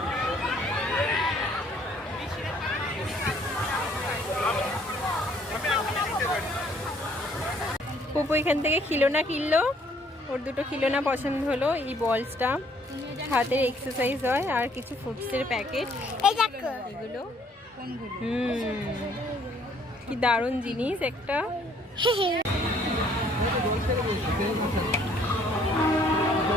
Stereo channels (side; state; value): both; normal; correlation 0.62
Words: পুপু এখান থেকে খিলোনা কিনলো, ওর দুটো খিলোনা পছন্দ হলো। এই বলসটা হাতের এক্সারসাইজ হয়, আর কিছু ফুডসের প্যাকেট এগুলো। কি দারুণ জিনিস একটা।